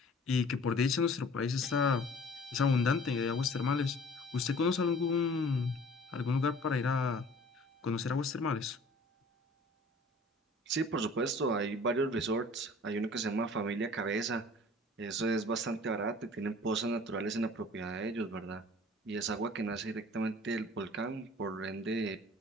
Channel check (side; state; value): both; normal; correlation 0.49